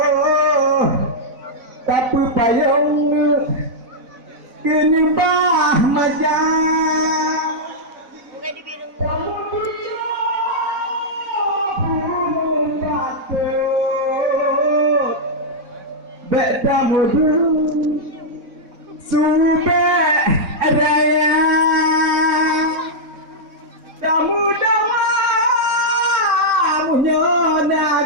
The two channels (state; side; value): late; left; 4.0 ms